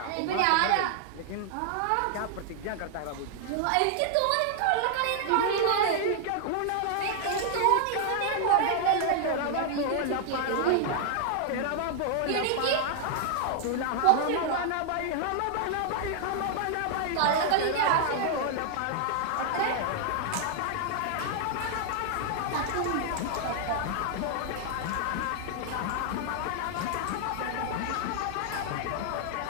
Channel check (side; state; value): both; different; correlation 0.00